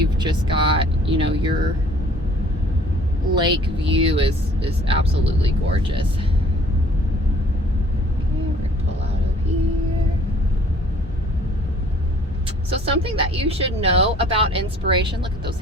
just got, you know, your lake view is absolutely gorgeous. Okay, we're gonna pull out of here. So something that you should know about Inspiration, look at those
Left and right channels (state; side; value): normal; both; correlation 0.55